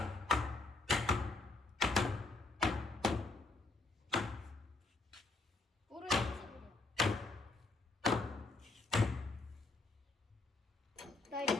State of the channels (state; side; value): quieter; right; 3.4 dB